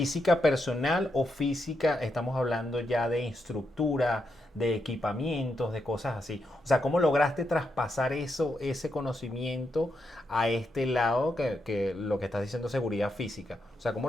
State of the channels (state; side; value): normal; both; correlation 0.82